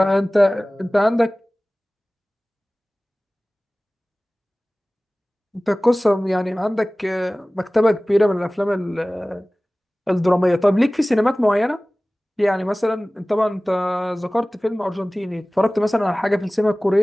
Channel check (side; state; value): both; normal; correlation 0.98